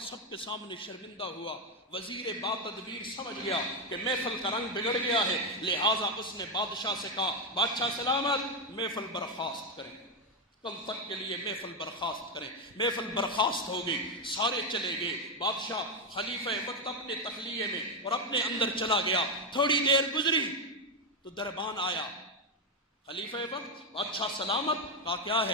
سب کے سامنے شرمندہ ہوا. وزیر با تدبیر سمجھ گیا کہ محفل کا رنگ بگڑ گیا ہے, لہٰذا اس نے بادشاہ سے کہا, بادشاہ سلامت, محفل برخاست کریں, کل تک کے لیے محفل برخاست کریں. محفل برخاست ہو گئی, سارے چلے گئے. بادشاہ خلیفہ وقت اپنے تخلیے میں اور اپنے اندر چلا گیا. تھوڑی دیر گزری تو دربان آیا. خلیفہ وقت, بادشاہ سلامت. کہا کیا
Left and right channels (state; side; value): normal; both; correlation 0.06